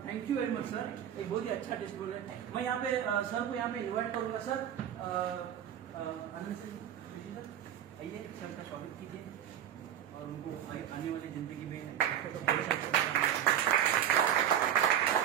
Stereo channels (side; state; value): left; quieter; 10.1 dB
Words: Thank you very much sir. एक बहुत ही अच्छा टेस्टबुल है. मैं यहाँ पे सर को यहाँ पे इन्वाइट करूंगा. सर आइए, सर का स्वागत कीजिए और उनको आने वाली जिंदगी में